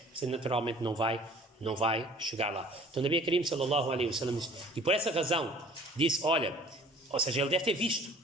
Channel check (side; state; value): both; normal; correlation 0.50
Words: você naturalmente não vai chegar lá. Então, Nabi Karim sallallahu alaihi wasallam disse, e por essa razão disse, olha, ou seja, ele deve ter visto